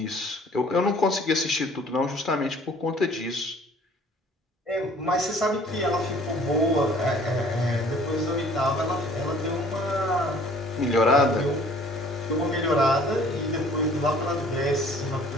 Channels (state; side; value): normal; both; correlation 0.54